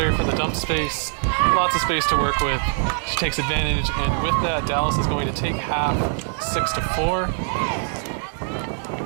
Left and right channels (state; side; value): silent; left; 59 dB below the other